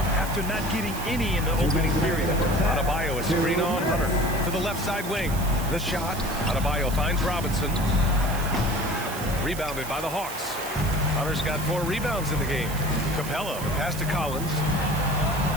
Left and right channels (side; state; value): right; noise; hiss, 11 dB below the sound